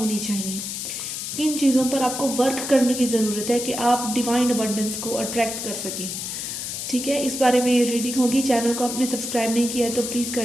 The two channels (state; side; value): noise; left; hiss, 5 dB below the sound